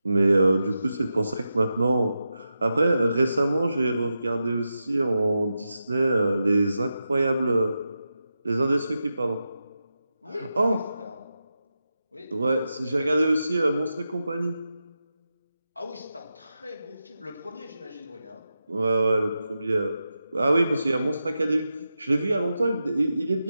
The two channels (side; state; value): both; inverted; correlation -0.89